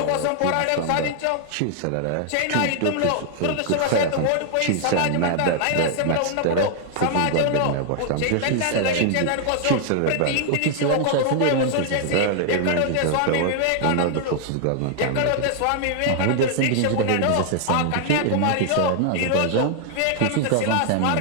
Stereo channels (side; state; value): both; different; correlation 0.00